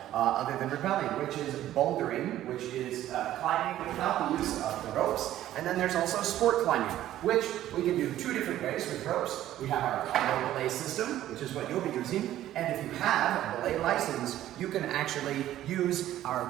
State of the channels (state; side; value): quieter; left; 13.1 dB